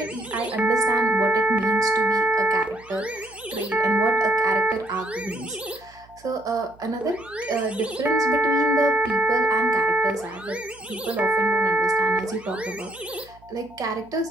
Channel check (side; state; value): right; noise; hum, 27 dB below the sound